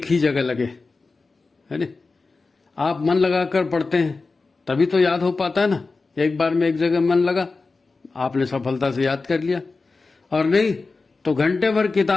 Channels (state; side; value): quieter; right; 3.9 dB